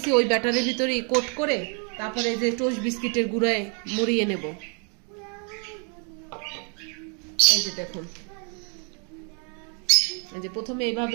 ওই ব্যাটারের ভিতরে কোট করে তারপরে এই যে টোস্ট বিস্কিটের গুঁড়ায় মুড়িয়ে নেব। এই যে দেখুন, এই যে প্রথমে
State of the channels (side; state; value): left; quieter; 38.3 dB